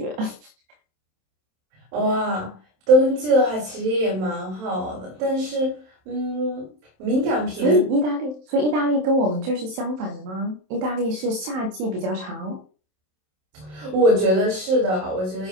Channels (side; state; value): left; late; 27 ms